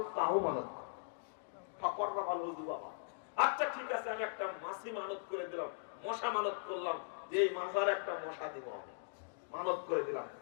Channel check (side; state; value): right; silent; digital silence